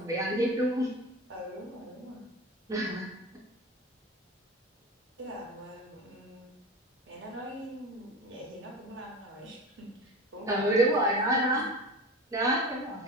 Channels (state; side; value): normal; both; correlation 0.30